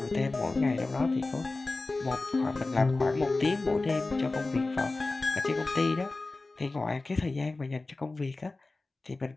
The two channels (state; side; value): quieter; right; 3.3 dB